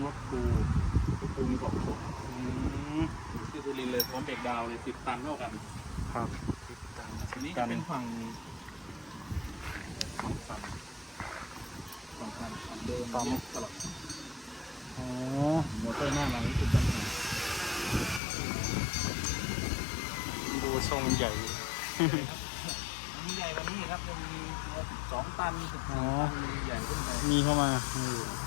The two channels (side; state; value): right; drops out; at 18.2 s